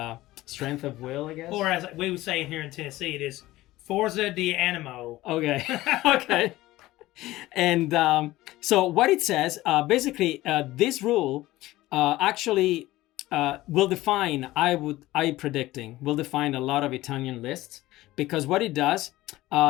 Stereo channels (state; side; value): quieter; right; 17.2 dB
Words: strength of will, I guess. Or as we would say here in Tennessee, it is Forza di Animo. Okay. Okay. And so what it says, basically, this rule actually will define, will define a lot of Italian lists, because what it does,